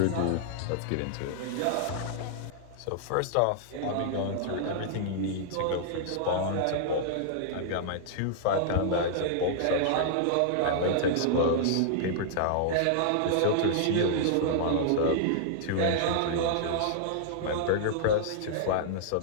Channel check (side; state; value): both; different; correlation -0.01